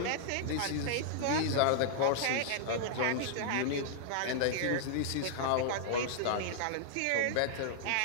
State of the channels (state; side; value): different; both; correlation -0.01